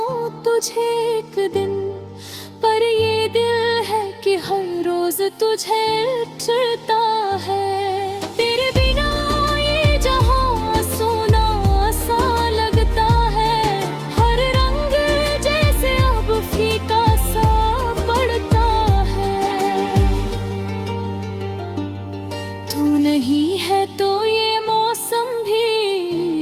तुझे एक दिन, पर ये दिल है कि हर रोज तुझे चिढ़ता है। तेरे बिना ये जहां सोना सा लगता है, हर रंग जैसे अब फीका सा पड़ता है। तू नहीं है तो ये मौसम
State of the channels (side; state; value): both; identical; correlation 1.00